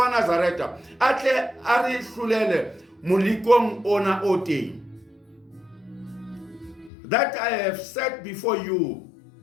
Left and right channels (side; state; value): right; drops out; at 6.9 s